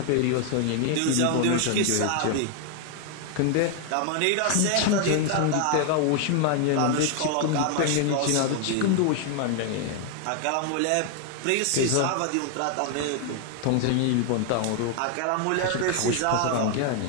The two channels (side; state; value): both; different; correlation 0.00